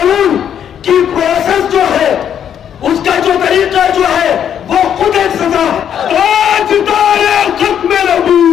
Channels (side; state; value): right; quieter; 9.1 dB